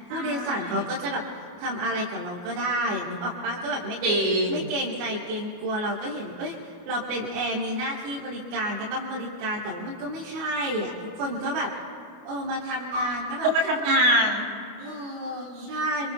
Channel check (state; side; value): late; left; 29 ms